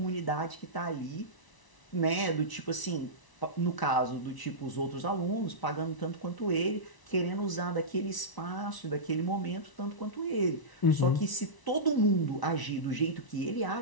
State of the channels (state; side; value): late; right; 1.0 ms